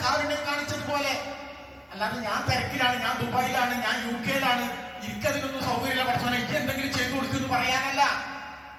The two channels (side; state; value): both; identical; correlation 1.00